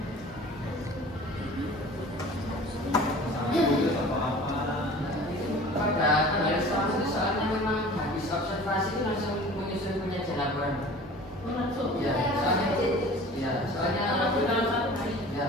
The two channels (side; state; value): both; normal; correlation 0.43